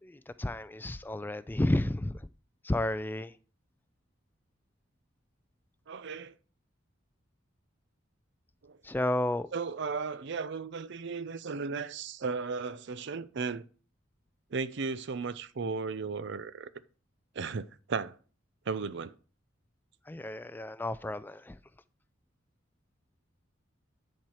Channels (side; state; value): both; normal; correlation 0.51